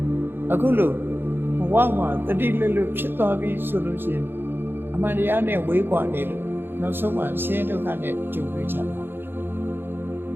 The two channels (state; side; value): late; left; 0.10 ms